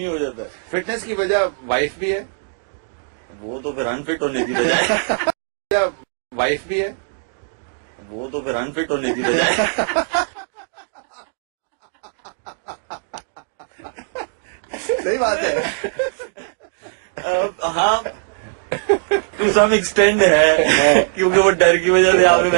हो जाता है। फिटनेस की वजह वाइफ भी है, वो तो फिर अनफिट होने की बजाय वाइफ भी है, वो तो फिर अनफिट होने की बजाय सही बात है। हाँ टू सम एक्सटेंड है, क्योंकि वो डर की वजह से आपने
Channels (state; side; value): silent; left; digital silence